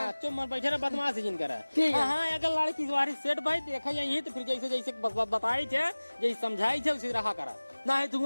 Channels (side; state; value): both; inverted; correlation -1.00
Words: चुप बैठे रहा बदमाश जिन करा। हाँ अगर लड़की तुम्हारी सेट भाई देखा यही तो फिर जैसे जैसे बताई थे जैसे समझाई थे उसी रहा करा ना है। तू